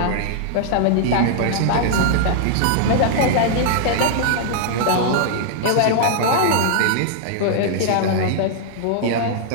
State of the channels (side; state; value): both; different; correlation -0.01